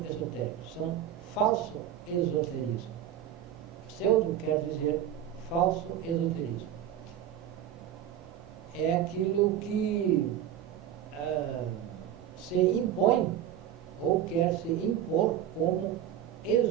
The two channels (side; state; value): left; quieter; 10.6 dB